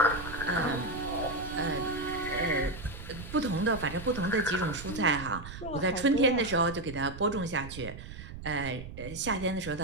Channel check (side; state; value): right; noise; rumble, 12 dB below the sound